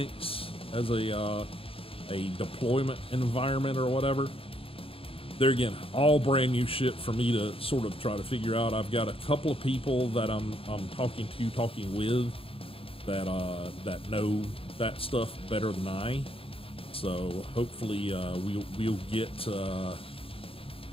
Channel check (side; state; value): right; late; 0.27 ms